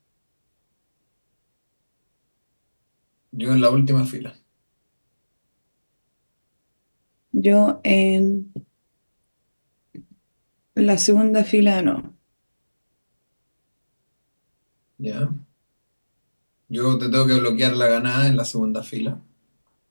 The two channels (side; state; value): both; inverted; correlation -1.00